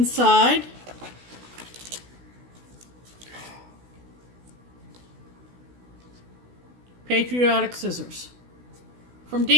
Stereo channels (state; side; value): late; left; 16 ms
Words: patriotic scissors from